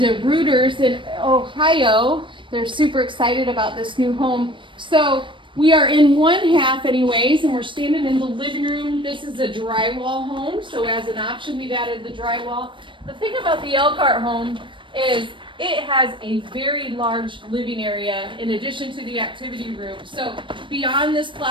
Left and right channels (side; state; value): left; late; 0.24 ms